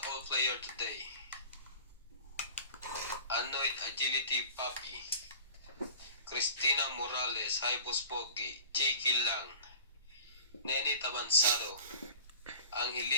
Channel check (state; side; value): inverted; both; correlation -0.41